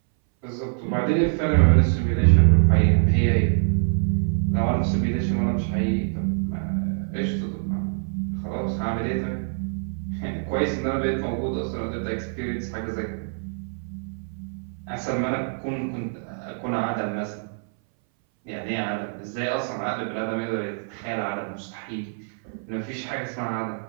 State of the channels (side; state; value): left; silent; 61 dB below the other